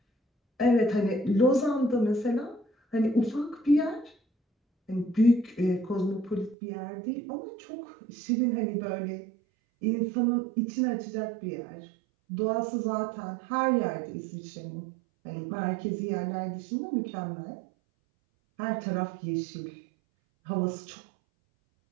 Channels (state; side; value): drops out; left; at 6.6 s